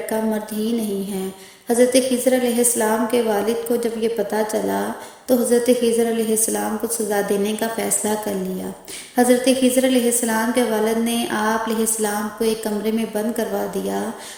مرد ہی نہیں ہے۔ حضرت خضر علیہ السلام کے والد کو جب یہ پتہ چلا تو حضرت خضر علیہ السلام کو سزا دینے کا فیصلہ کر لیا۔ حضرت خضر علیہ السلام کے والد نے آپ علیہ السلام کو ایک کمرے میں بند کروا دیا۔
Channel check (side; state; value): both; identical; correlation 1.00